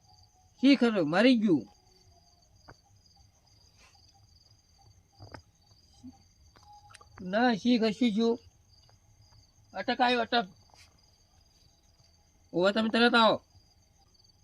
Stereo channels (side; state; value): both; identical; correlation 1.00